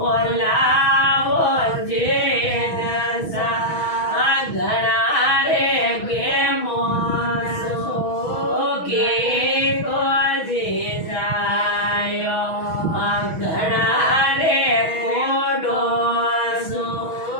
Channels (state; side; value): late; right; 6.2 ms